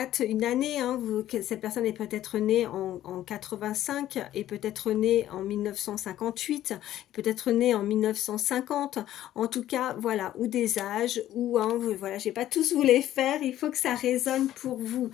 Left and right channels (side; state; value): right; quieter; 12.9 dB